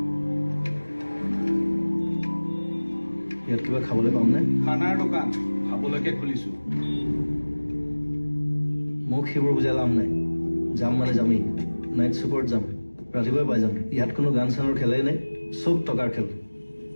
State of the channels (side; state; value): both; inverted; correlation -1.00